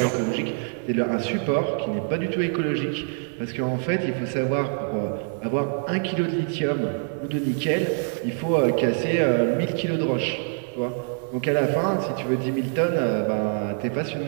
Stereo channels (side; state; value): left; silent; 56 dB below the other